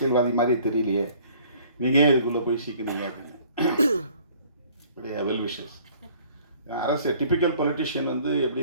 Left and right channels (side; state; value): both; inverted; correlation -0.55